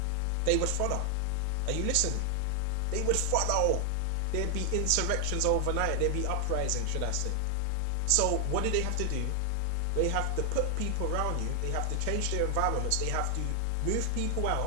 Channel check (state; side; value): different; both; correlation 0.00